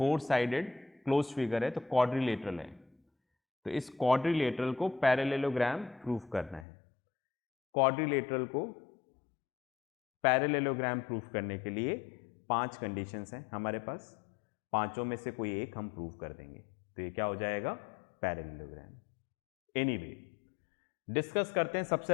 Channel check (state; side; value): drops out; right; at 6.7 s